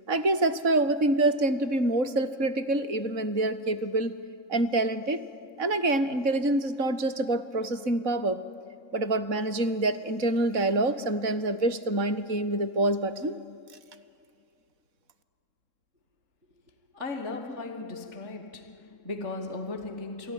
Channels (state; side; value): late; left; 3.7 ms